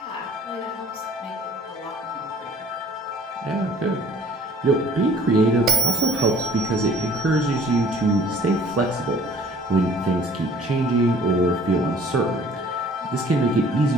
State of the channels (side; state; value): both; normal; correlation 0.54